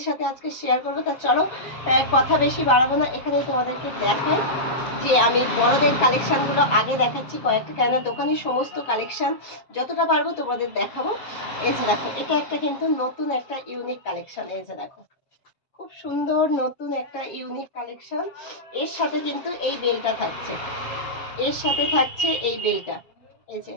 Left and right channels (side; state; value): right; late; 7.3 ms